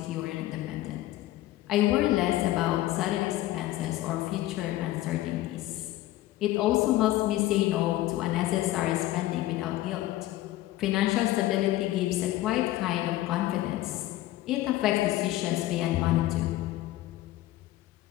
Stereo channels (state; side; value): quieter; right; 15.6 dB